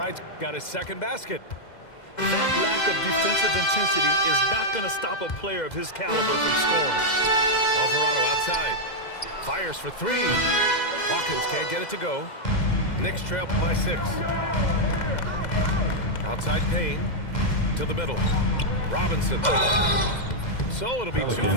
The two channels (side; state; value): right; late; 2.1 ms